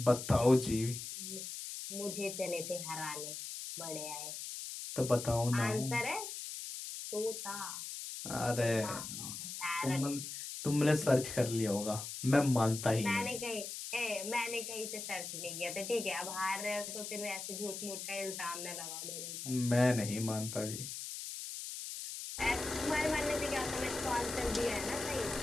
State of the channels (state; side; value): noise; left; hiss, 7 dB below the sound